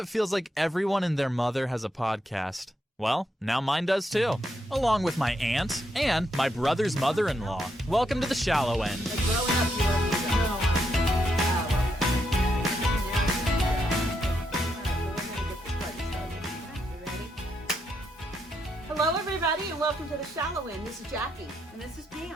feels like everyone and their mother has a podcast. Well, now mine does too, along with my aunt and my brother's mother-in-law. Welcome to The Shallow End. Hello, everybody, and welcome to The Shallow End. This is Jackie. And this is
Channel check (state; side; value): normal; both; correlation 0.79